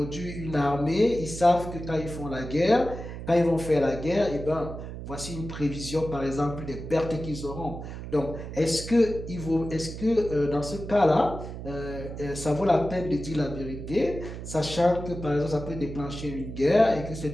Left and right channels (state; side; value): noise; right; hum, 9 dB below the sound